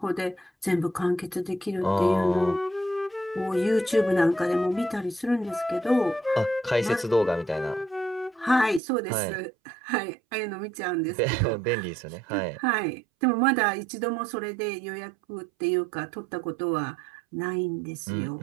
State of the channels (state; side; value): drops out; left; at 8.8 s